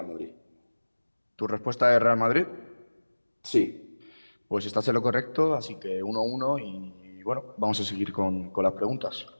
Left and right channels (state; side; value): inverted; both; correlation -1.00